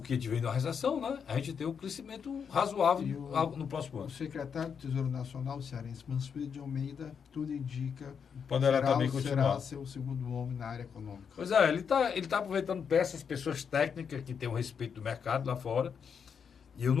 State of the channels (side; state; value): right; quieter; 6.8 dB